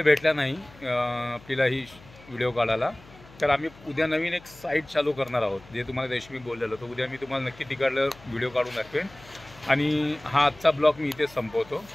भेटला नाही आपल्याला ही व्हिडिओ काढायला. तर आम्ही उद्या नवीन एक साईट चालू करणार आहोत, जे तुम्हाला रेशमी बोललेलं. तर उद्या मी तुम्हाला नक्की तिकडलं व्हिडिओ काढून दाखवेन. आणि हा आजचा ब्लॉग मी इथेच संपवतो.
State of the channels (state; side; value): noise; left; hum, 22 dB below the sound